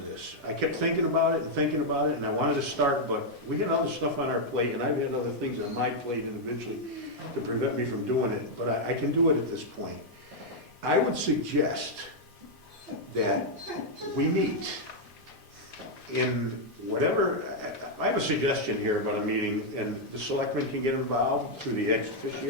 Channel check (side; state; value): both; normal; correlation -0.02